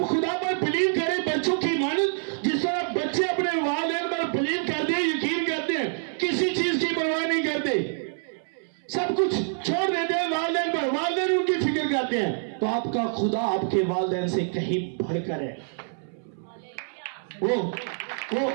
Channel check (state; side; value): silent; left; 61 dB below the other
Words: खुदा पर बिलीव करें। बच्चों की इमानत जिस तरह बच्चे अपने वालिदैन पर बिलीव करते हैं, यकीन करते हैं, किसी चीज की परवाह नहीं करते, सब कुछ छोड़ देते हैं वालिदैन पर, वालिदैन उनकी फिक्र करते हैं। तो आपका खुदा आपके वालिदैन से कहीं बढ़कर है। वो